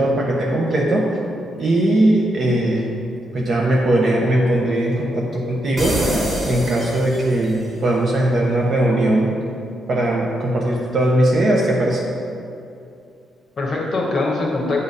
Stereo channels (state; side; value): normal; both; correlation 0.82